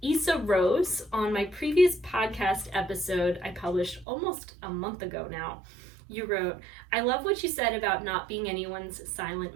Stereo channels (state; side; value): drops out; left; at 4.0 s